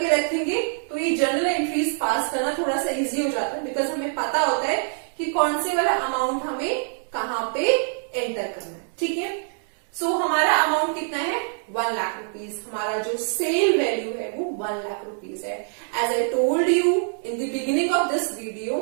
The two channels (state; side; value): silent; left; digital silence